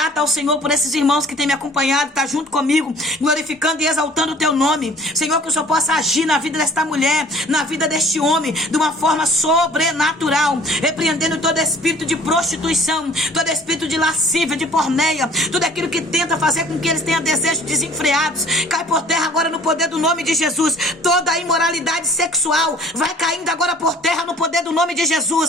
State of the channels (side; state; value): both; normal; correlation 0.51